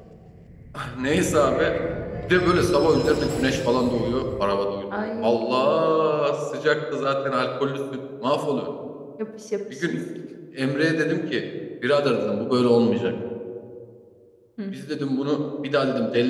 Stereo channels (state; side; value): identical; both; correlation 1.00